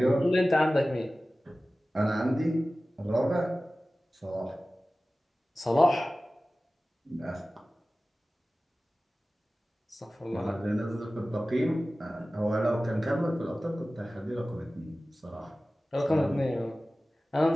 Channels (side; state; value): both; normal; correlation 0.96